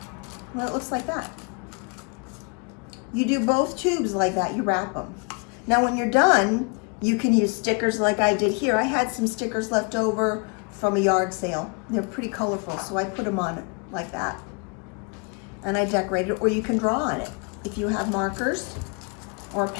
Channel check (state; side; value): quieter; right; 33.8 dB